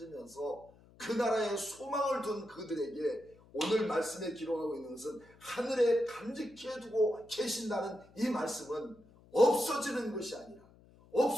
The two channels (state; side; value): noise; left; hum, 26 dB below the sound